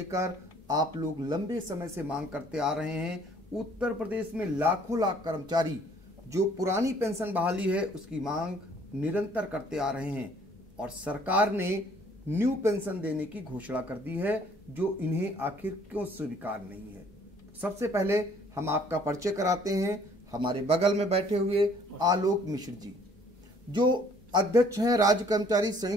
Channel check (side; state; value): both; normal; correlation 0.59